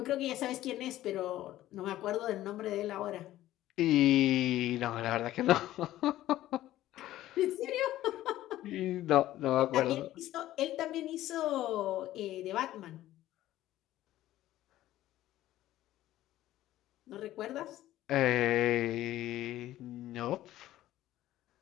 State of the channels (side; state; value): right; quieter; 14.4 dB